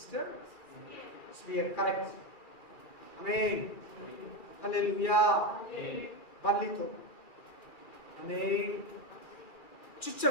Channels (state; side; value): late; right; 2.4 ms